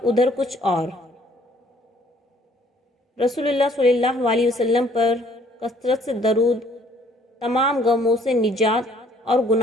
ادھر کچھ اور۔ رسول اللہ صلی اللہ علیہ وسلم پر کثرت سے درود تمام غموں سے نجات اور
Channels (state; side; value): normal; both; correlation 0.60